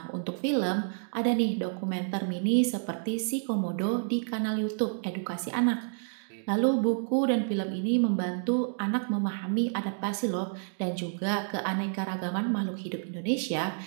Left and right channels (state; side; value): silent; left; digital silence